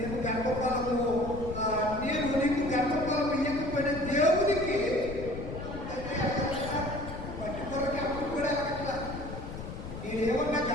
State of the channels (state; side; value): noise; left; rumble, 9 dB below the sound